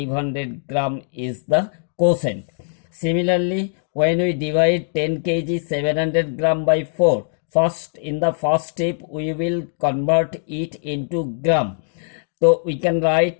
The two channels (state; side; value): silent; right; digital silence